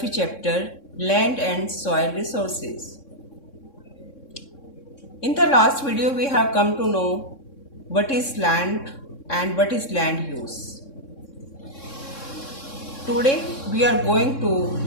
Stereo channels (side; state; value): right; late; 3.6 ms